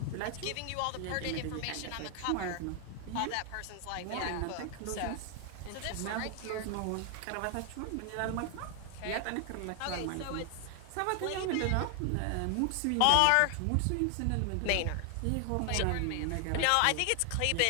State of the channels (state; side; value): different; both; correlation 0.00